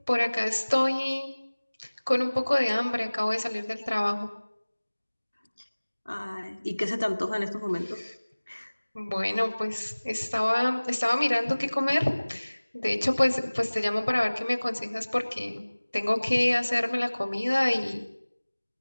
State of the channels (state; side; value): inverted; both; correlation -1.00